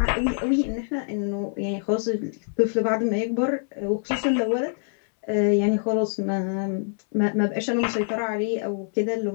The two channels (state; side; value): silent; right; 62 dB below the other